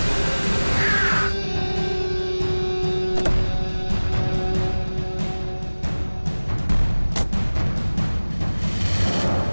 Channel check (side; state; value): both; inverted; correlation -1.00